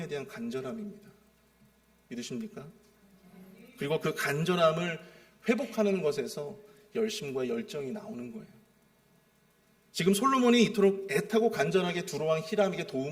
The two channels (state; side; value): identical; both; correlation 1.00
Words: 대한 간절함입니다. 믿으십니까? 그리고 그 간절함을 회복하는 것에서 열심과 열정이 나오는 거예요. 지금 솔로몬이 이토록 애타고 간절하게 두로왕 히람에게